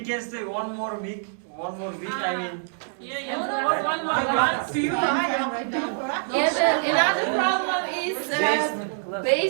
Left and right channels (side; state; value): left; silent; 61 dB below the other